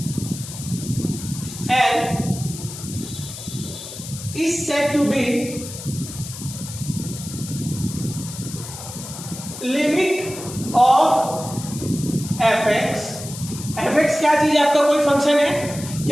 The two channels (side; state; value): left; noise; hiss, 11 dB below the sound